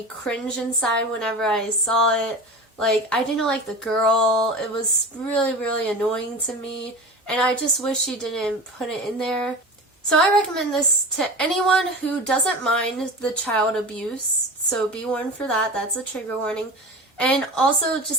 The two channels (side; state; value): both; normal; correlation 0.32